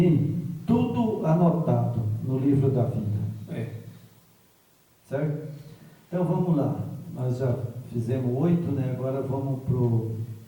Tudo anotado no livro da vida. Certo? Então vamos lá. Nós já fizemos 8, né? Agora vamos para o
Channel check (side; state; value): both; identical; correlation 1.00